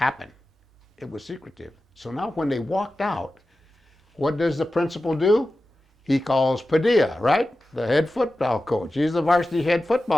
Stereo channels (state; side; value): normal; both; correlation 0.94